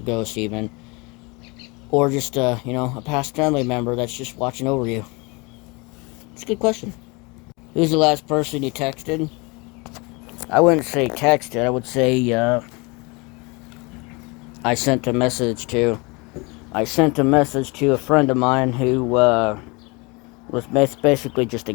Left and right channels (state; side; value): quieter; right; 27.7 dB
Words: ghost even, or just a past family member that's just watching over you. It's a good question. Who's the last person you texted? I wouldn't say texted. I would say I sent a message to. I sent a message to a friend of mine who was basically just a